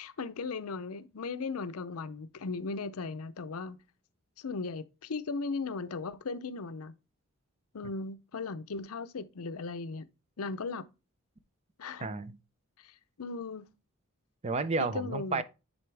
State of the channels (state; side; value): normal; both; correlation 0.03